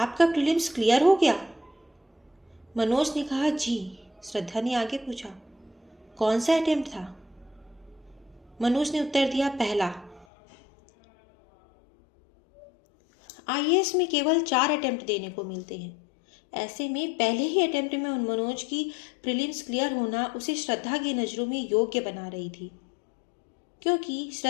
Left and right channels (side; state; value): right; drops out; at 10.2 s